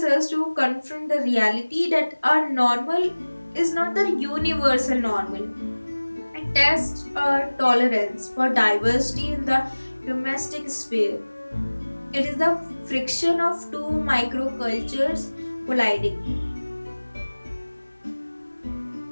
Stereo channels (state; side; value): inverted; both; correlation -1.00